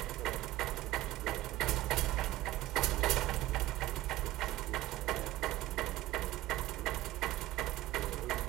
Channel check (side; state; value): left; quieter; 16.3 dB